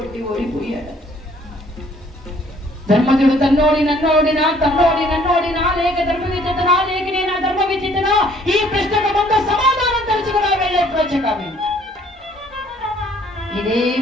ఓడిపోయాడు. ధర్మజుడు తన్నోడి నన్నోడినా, తన్నోడి నన్నోడినా, లేక ధర్మ విచితనా, లేక నేను ధర్మ విచితనా? ఈ ప్రశ్నకు ముందు సమాధానం తెలుసుకున్నా వెళ్ళే ప్రాచకామి. ఇదే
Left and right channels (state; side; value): normal; both; correlation 0.60